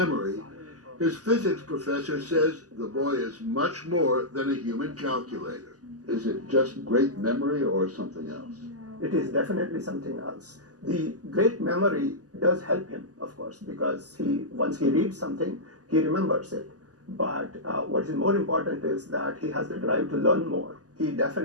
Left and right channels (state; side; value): late; left; 0.67 ms